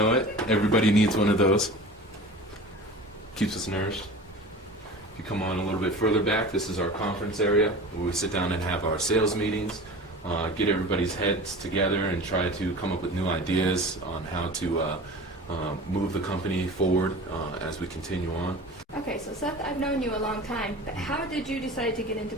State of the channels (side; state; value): both; normal; correlation 0.37